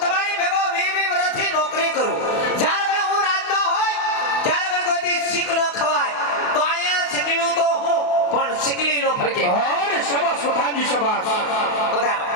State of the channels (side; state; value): right; late; 28 ms